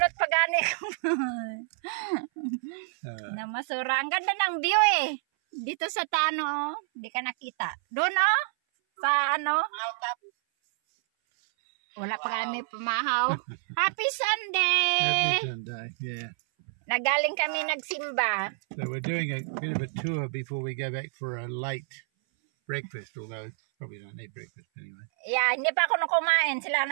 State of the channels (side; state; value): left; silent; 58 dB below the other